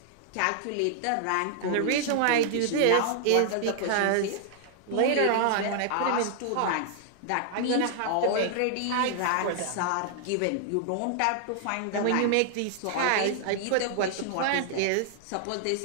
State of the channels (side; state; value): both; different; correlation 0.00